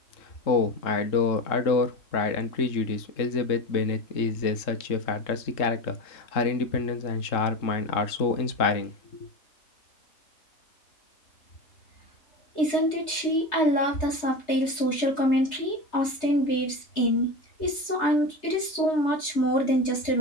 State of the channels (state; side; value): late; right; 3.3 ms